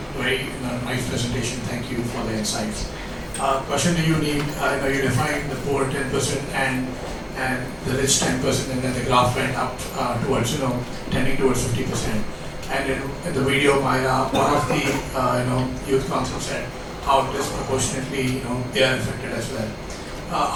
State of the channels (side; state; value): both; identical; correlation 1.00